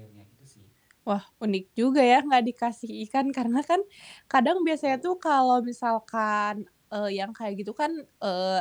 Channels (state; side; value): identical; both; correlation 1.00